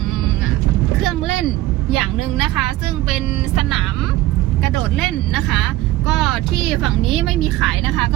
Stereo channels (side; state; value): left; quieter; 16.3 dB